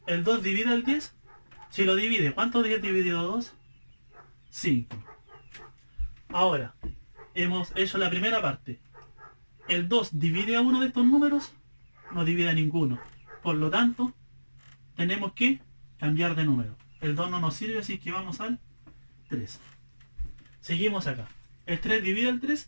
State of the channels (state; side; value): inverted; both; correlation -1.00